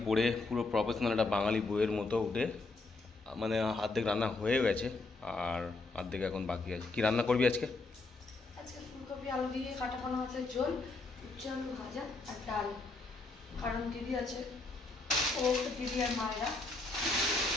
পরে পুরো প্রফেশনাল একটা বাঙালি বইয়ের মতো উঠে মানে অর্ধেক রান্না হয়ে গেছে আর অর্ধেক এখন বাকি আছে। কি রান্না করবি আজকে? আজকে ফুলকপি আলু দিয়ে কাটা পোনা মাছের ঝোল, উচ্ছে আলু ভাজা আর ডাল। কারণ দিদি আছে, ও দিদি আর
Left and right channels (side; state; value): right; quieter; 3.4 dB